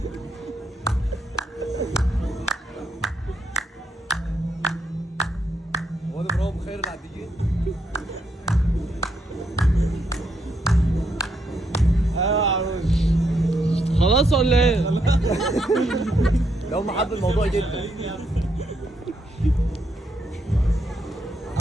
هو ده برافو خير العديين. ايوه يا عروس. خلاص ولا ايه؟ ده هم حبوا الموضوع جدا.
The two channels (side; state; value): both; normal; correlation 0.77